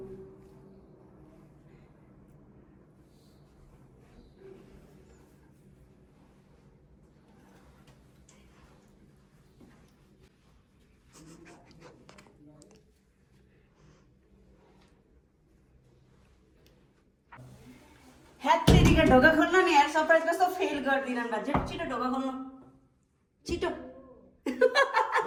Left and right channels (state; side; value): identical; both; correlation 1.00